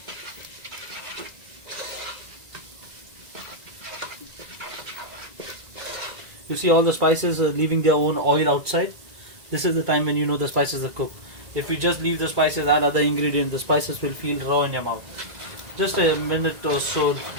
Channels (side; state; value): left; late; 1.9 ms